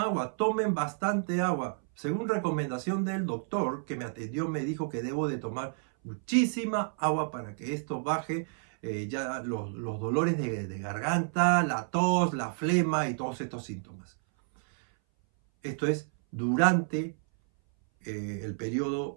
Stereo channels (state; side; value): silent; left; 58 dB below the other